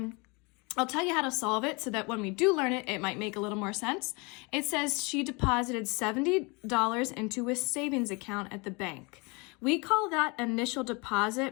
I'll tell you how to solve it so that when we do learn it, it might make a little more sense. It says she deposited $70 into a savings account at the bank. We call that initial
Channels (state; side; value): quieter; right; 28.8 dB